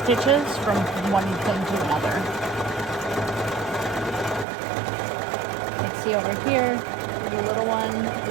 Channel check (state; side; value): drops out; left; at 4.5 s